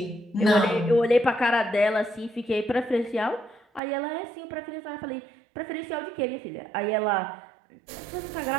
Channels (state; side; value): drops out; left; at 3.8 s